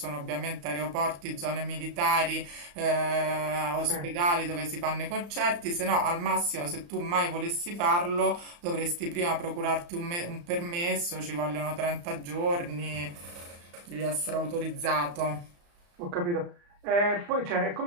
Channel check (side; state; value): left; late; 35 ms